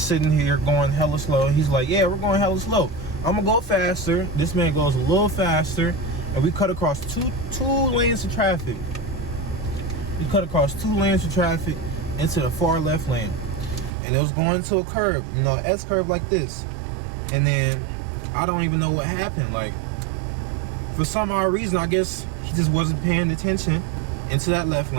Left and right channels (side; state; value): left; drops out; at 13.9 s